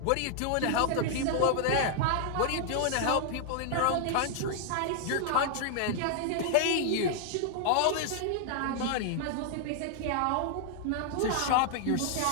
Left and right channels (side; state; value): both; different; correlation 0.00